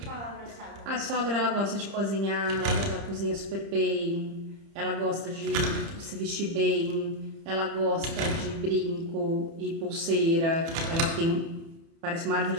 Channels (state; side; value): late; left; 30 ms